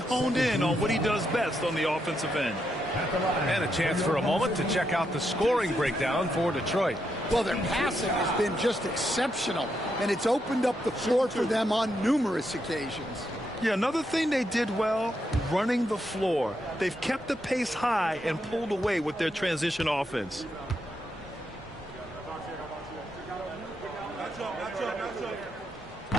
in on what he does best on the offensive end. And a chance for a moment to check out the scoring breakdown for Detroit. Well, their passing has been just exceptional, and it's opened up the floor for them on numerous occasions. Yeah, another thing they did well, running the floor. They've kept the pace high and pulled away with their transition offense.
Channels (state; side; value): normal; both; correlation 0.81